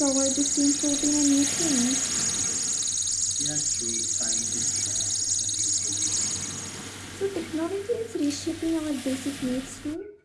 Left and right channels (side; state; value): both; identical; correlation 1.00